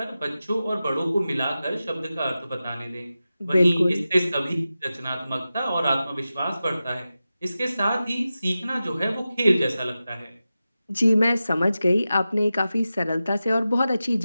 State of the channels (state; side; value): inverted; both; correlation -0.93